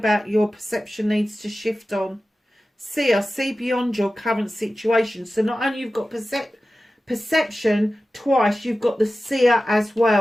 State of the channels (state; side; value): normal; both; correlation 0.95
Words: your perception needs to shift on. See beyond your current situation. So not only you've got perception twice, you've got the seer as